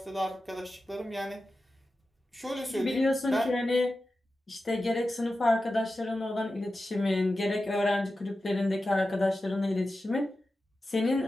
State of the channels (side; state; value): both; normal; correlation 0.93